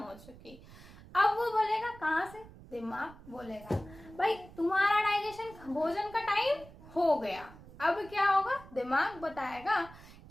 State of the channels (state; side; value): noise; right; rumble, 19 dB below the sound